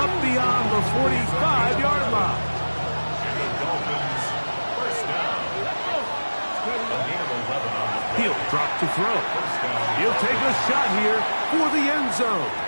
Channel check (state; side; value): inverted; both; correlation -1.00